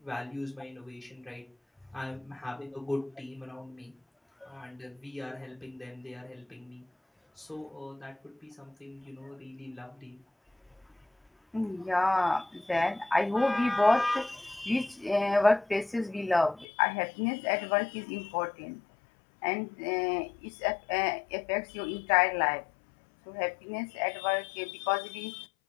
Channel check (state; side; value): drops out; right; at 16.7 s